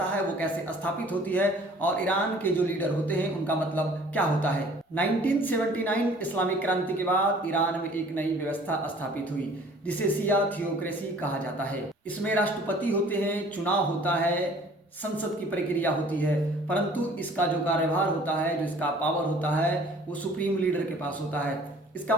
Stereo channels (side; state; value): both; normal; correlation 0.52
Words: है वो कैसे स्थापित होती है और ईरान के जो लीडर होते हैं उनका मतलब क्या होता है। 1979 इस्लामिक क्रांति के बाद ईरान में एक नई व्यवस्था स्थापित हुई जिसे शिया थियोक्रेसी कहा जाता है। इसमें राष्ट्रपति होते हैं, चुनाव होता है, संसद की प्रक्रिया होती है, परंतु इसका जो कार्यभार होता है, जो इसका पावर होता है वो सुप्रीम लीडर के पास होता है। इसका